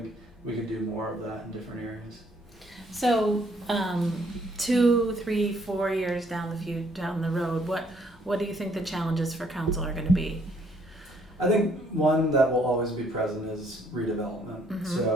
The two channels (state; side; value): normal; both; correlation 0.66